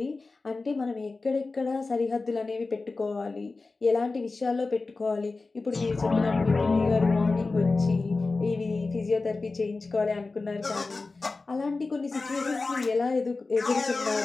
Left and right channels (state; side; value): quieter; right; 3.7 dB